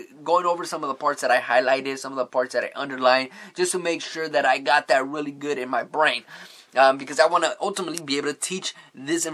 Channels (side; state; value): both; identical; correlation 1.00